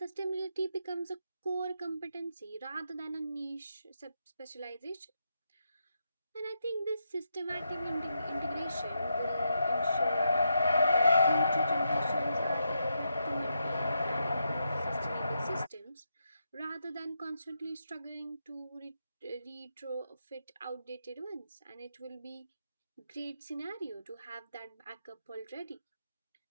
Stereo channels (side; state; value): both; inverted; correlation -0.83